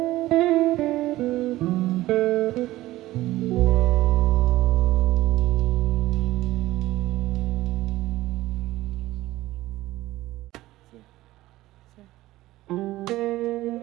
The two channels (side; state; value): left; quieter; 16.7 dB